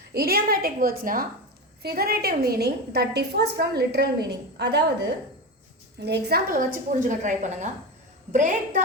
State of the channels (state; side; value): normal; both; correlation 0.21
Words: இடியோமேட்டிக் வேர்ட்ஸ்னால் figurative meaning that differs from literal meaning. அதாவது இந்த எக்ஸாம்பிள் வச்சு புரிஞ்சுக்க ட்ரை பண்ணுங்கள். பிரேக்